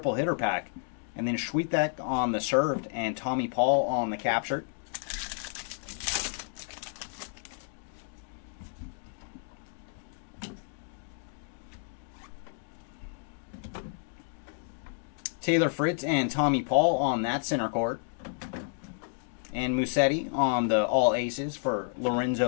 hitter pack. And then Schwitek on the served and Tommy Paul on the captured. Taylor Fritz and Tommy Paul on that center court. And Musetti on the all aces for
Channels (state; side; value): silent; right; digital silence